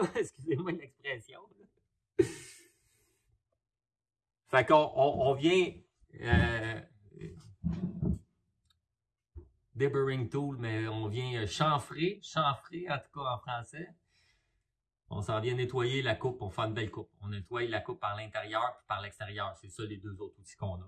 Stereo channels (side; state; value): both; identical; correlation 1.00